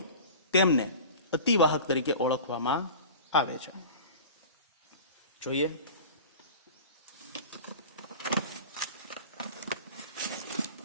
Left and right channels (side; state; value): both; inverted; correlation -0.36